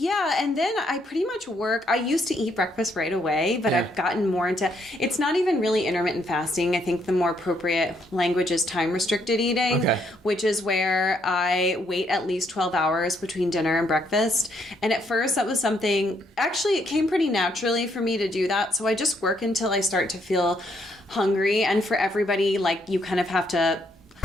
I pretty much work. I used to eat breakfast right away, but I've gotten more into, it's not even really intermittent fasting. I think the more appropriate language is time restricted eating, which is where I wait at least 12 hours between dinner and breakfast. And at first that was something, actually it came pretty naturally for me to do that. So I just work until I start to feel hungry. And for everybody, like, you kind of have to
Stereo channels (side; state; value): both; normal; correlation 0.72